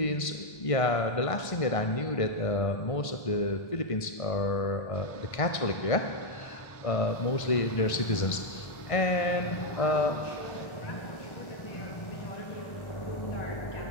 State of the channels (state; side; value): late; right; 1.5 ms